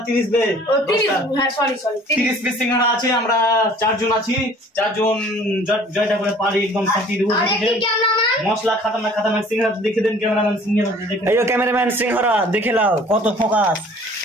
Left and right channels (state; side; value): normal; both; correlation 0.51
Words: 30 দে 30 হ্যাঁ সরি 30 পিস সিঙ্গাড়া আছে। আমরা 4 জন আছি, 4 জন জয়টা করে পারি একদম ফাটি দেব। মশলা খাতারনাক সিঙ্গাড়া দেখে দেন ক্যামেরাম্যান। সিঙ্গাড়া দেখে এই ক্যামেরাম্যান সিঙ্গাড়া দেখে নাও কত ফোকাস।